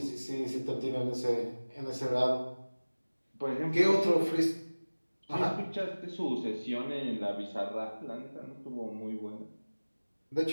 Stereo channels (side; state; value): both; inverted; correlation -1.00